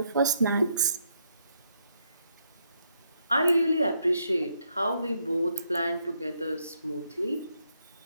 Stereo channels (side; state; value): both; inverted; correlation -0.76